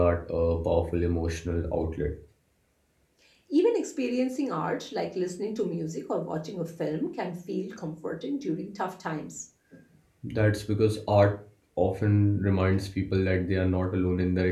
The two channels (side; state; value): both; identical; correlation 1.00